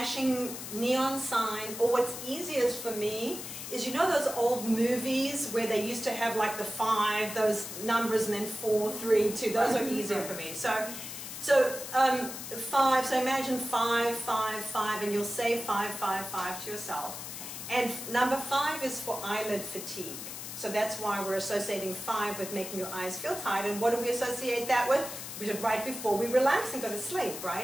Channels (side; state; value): left; noise; hiss, 9 dB below the sound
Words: neon sign, or what's easiest for me is those old movies where they used to have like the 5, those numbers, and then 4, 3, 2. Those are easier for me. So 5. So imagine 5, 5, 5, and you'll say 5, 5, 5 to yourself. And number 5 is for eyelid fatigue. So that's why we're associating 5 with making your eyes feel tired. And what do we associate that with? We did right before we relax and go to sleep,